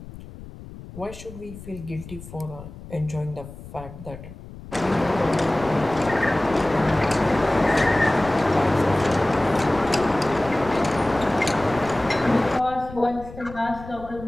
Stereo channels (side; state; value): left; noise; rumble, 15 dB below the sound